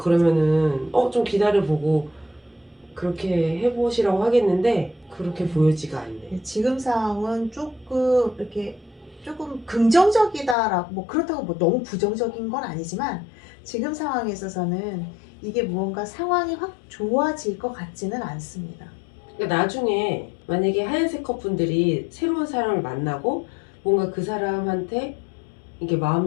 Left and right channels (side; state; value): right; drops out; at 10.6 s